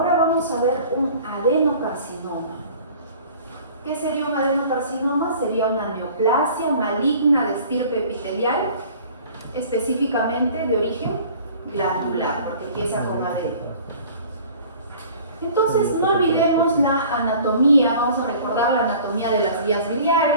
vamos a ver un adenocarcinoma. ¿Qué sería un adenocarcinoma? Sería una neoplasia maligna de estirpe epitelial, específicamente de origen glandular, porque empieza con adeno. Entonces, no olvidemos la anatomía, vamos a recordar la anatomía de las vías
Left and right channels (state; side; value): inverted; both; correlation -0.47